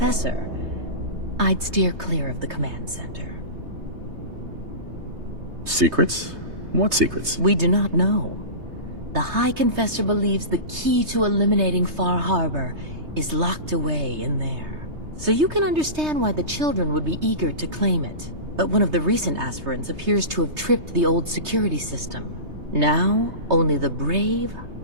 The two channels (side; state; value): left; late; 3.3 ms